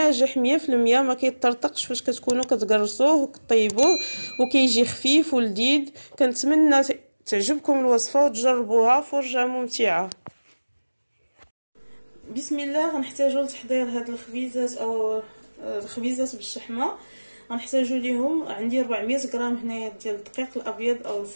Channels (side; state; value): both; inverted; correlation -1.00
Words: 100%، ما كيطرطقش فاش كتكونوا كتقرصوه وكطيبوه، وكيجي خفيف ولذيذ. كنتمنى تعجبكم الوصفه وتجربوها، فرجه ممتعه. بسم الله. غنحتاجو لتحضير هاد الخبيزات او الخبيزات بالشحمه. غنحتاجو ليهم عندي 400 غرام هنايا ديال الدقيق الابيض او